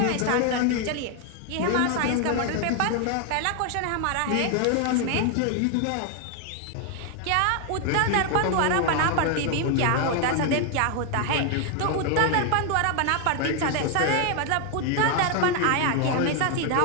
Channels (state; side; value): different; both; correlation 0.00